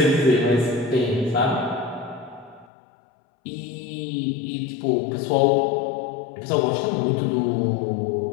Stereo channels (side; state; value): right; drops out; at 2.7 s